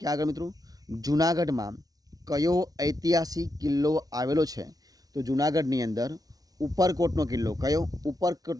ક્યાં આગળ મિત્રો? જૂનાગઢમાં કયો ઐતિહાસિક કિલ્લો આવેલો છે? તો જૂનાગઢની અંદર ઉપરકોટનો કિલ્લો। કયો?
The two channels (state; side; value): late; left; 0.18 ms